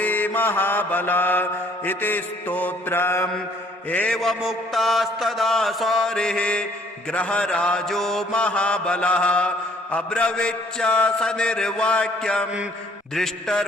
महाबल इति स्तोत्रम्। एवमुक्तास्तदा सौरिः ग्रहराजो महाबलः अब्रवीच्च सनिर्वाक्यं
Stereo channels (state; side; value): normal; both; correlation 0.60